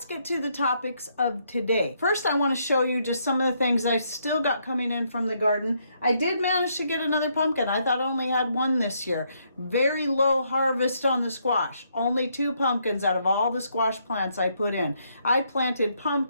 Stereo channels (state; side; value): inverted; both; correlation -0.74